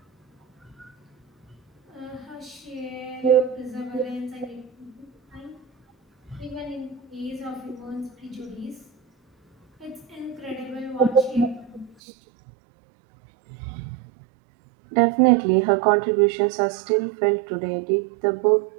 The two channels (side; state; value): left; drops out; at 12.0 s